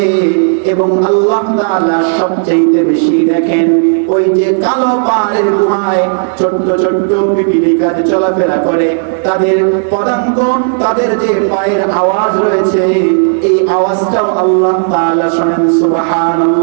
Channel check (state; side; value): silent; left; digital silence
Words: এবং আল্লাহ তাআলা সবচাইতে বেশি দেখেন। ওই যে কালো পাহাড়ের গুহায় ছোট্ট ছোট্ট পিপিলিকা যে চলাফেরা করে, তাদের পদাঙ্ক, তাদের যে পায়ের আওয়াজ রয়েছে, এই আওয়াজটাও আল্লাহ তাআলা শোনেন।